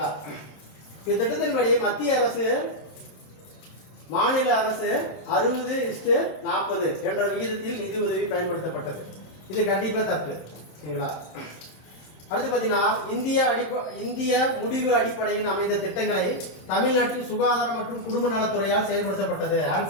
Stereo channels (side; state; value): right; late; 26 ms